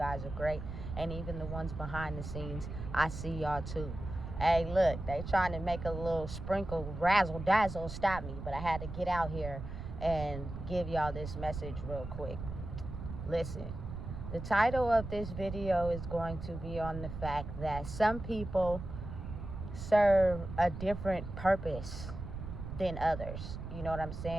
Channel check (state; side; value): noise; right; rumble, 8 dB below the sound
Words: are great. And even the ones behind the scenes, I see y'all too. Hey, look, they trying to make a little sprinkle razzle dazzle stop me, but I had to get out here and give y'all this message real quick. Listen, the title of this video is going to be on the fact that some people serve a different purpose than others. You know what I'm